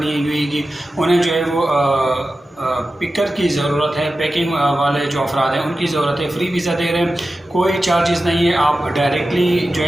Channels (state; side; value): normal; both; correlation 0.93